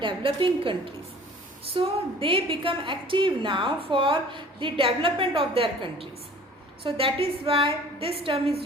developing countries. So they become active now for the development of their countries. So that is why this term is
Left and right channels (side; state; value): both; normal; correlation 0.48